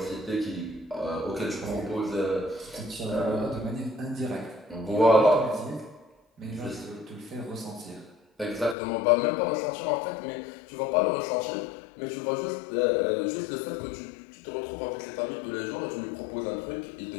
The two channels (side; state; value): right; drops out; at 8.8 s